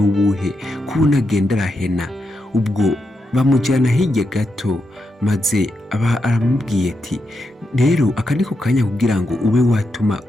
ko unagenda arahena? Ubwo bamujyana hirya gato, maze aramubwiye ati rero aka niko kanya kugira ngo ube watuma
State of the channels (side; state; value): both; normal; correlation 0.85